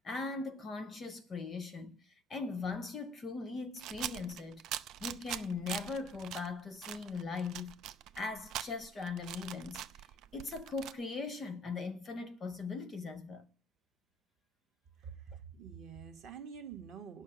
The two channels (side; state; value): both; normal; correlation 0.57